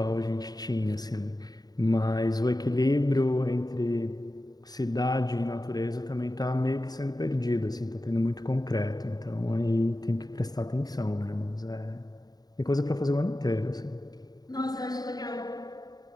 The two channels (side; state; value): right; late; 0.19 ms